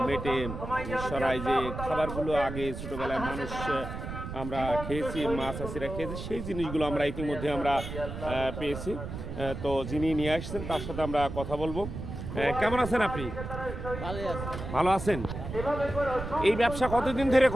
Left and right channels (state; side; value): noise; right; rumble, 7 dB below the sound